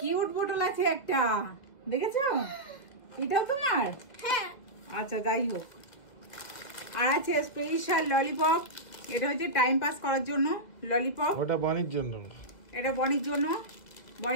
বোতল আছে একটা, দেখেছো? এটাও তোমার? হ্যাঁ। আচ্ছা যাই হোক। আর আছে স্পেশাল ললিপপ, এটা হচ্ছে টাইম পাস করার জন্য ললিপপ। ওটা বনির জন্য। এটা বনির জন্য।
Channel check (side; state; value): right; late; 1.8 ms